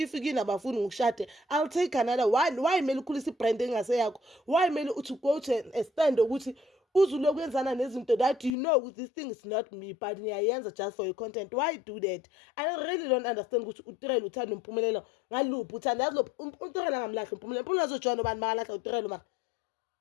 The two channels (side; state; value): right; drops out; at 8.5 s